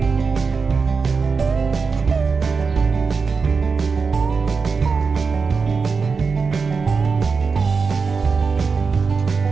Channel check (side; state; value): left; quieter; 5.0 dB